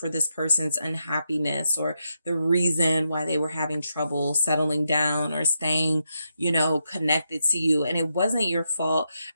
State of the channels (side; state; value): both; inverted; correlation -0.83